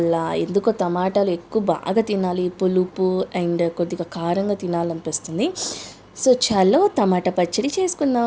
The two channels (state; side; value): identical; both; correlation 1.00